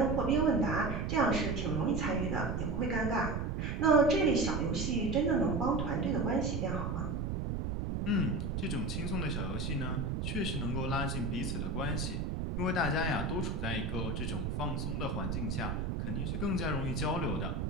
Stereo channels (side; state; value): right; noise; rumble, 1 dB below the sound